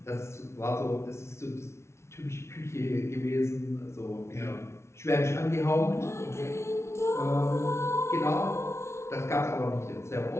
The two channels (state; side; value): late; right; 0.13 ms